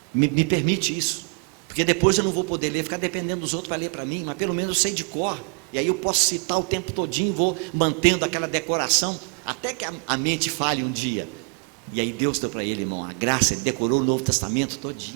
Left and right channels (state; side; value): quieter; left; 39.3 dB